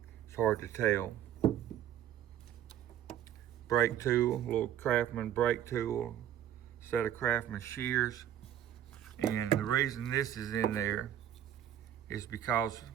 it's hard to tell. Brake tool, little Craftman brake tool, set of Craftman shears. And the reason this is in there is because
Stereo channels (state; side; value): quieter; left; 10.8 dB